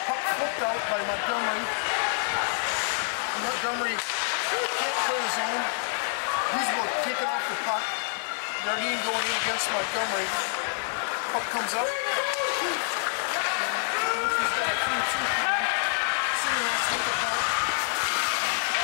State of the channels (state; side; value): silent; right; 60 dB below the other